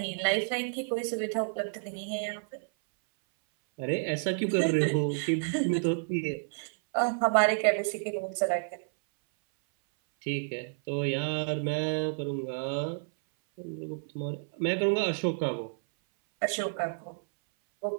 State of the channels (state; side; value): silent; left; 58 dB below the other